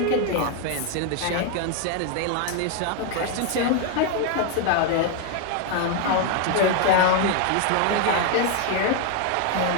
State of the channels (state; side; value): different; both; correlation 0.01